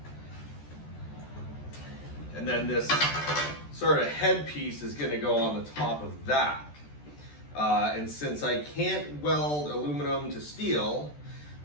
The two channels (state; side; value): late; right; 14 ms